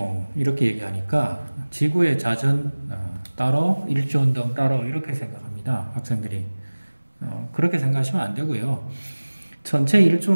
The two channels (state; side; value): inverted; both; correlation -1.00